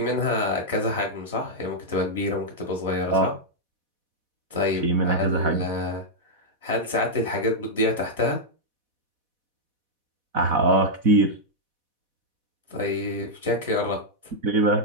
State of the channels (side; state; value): left; late; 4.1 ms